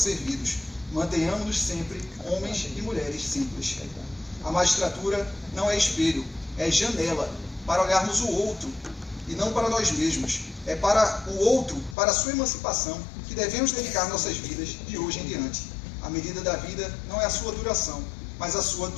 Mantenhamos-nos sempre homens e mulheres simples. A magistratura não é espelho, é janela para olharmos o outro e não para nós mesmos. É para o outro, para a sua emancipação, que devemos dedicar nossas vidas de hoje em diante. A medida da vida não é a sua duração, mas a sua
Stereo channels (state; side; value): drops out; right; at 12.0 s